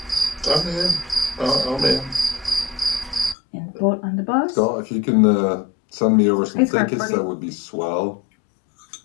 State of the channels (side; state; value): right; drops out; at 3.4 s